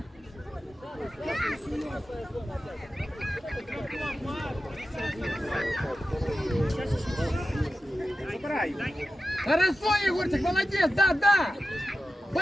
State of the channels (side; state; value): both; normal; correlation 0.92